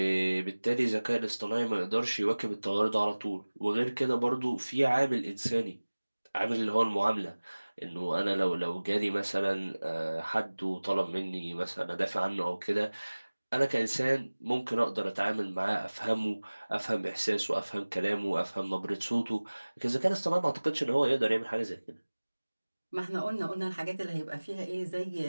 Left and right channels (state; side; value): inverted; both; correlation -1.00